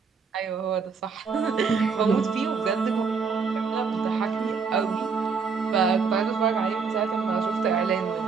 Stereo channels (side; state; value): left; quieter; 5.4 dB